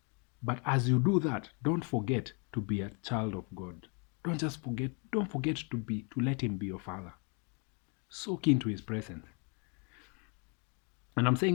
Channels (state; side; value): quieter; right; 35.5 dB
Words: But as you do that, don't forget to be a child of God. Don't forget to let him be your father. Soak into his presence. And I'm